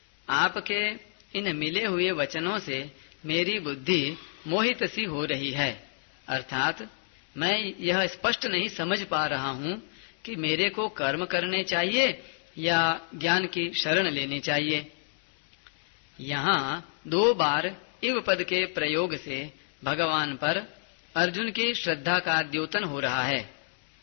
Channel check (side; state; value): right; silent; digital silence